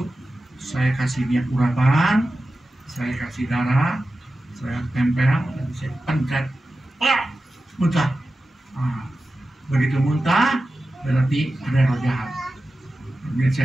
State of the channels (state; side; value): normal; both; correlation 0.93